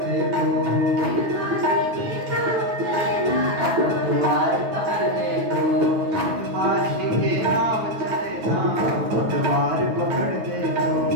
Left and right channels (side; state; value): left; late; 9.2 ms